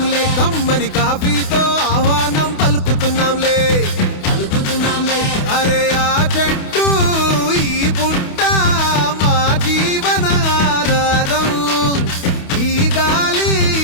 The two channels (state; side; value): late; right; 28 ms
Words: కమ్మని కాఫీతో ఆహ్వానం పలుకుతున్నాంలే అరే ఆ చెట్టు ఈ పుట్ట మా జీవన ఆధారం ఈ గాలి